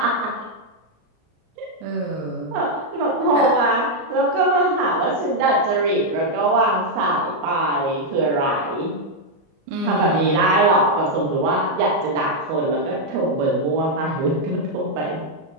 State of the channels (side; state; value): left; late; 38 ms